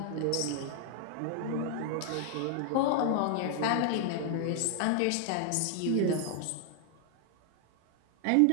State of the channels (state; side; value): different; both; correlation 0.00